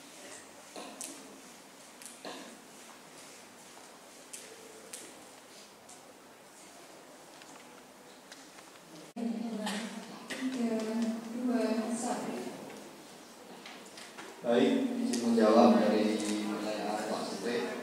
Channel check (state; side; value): identical; both; correlation 1.00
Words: Baik, izin menjawab dari pertanyaan Pak Supri.